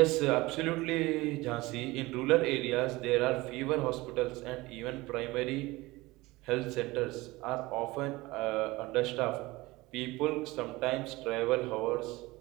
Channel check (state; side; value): quieter; left; 20.8 dB